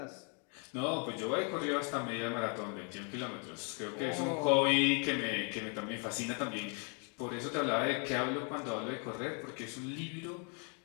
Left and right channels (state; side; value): quieter; right; 38.4 dB